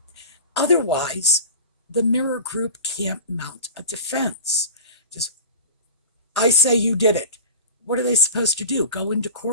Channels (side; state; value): both; inverted; correlation -0.32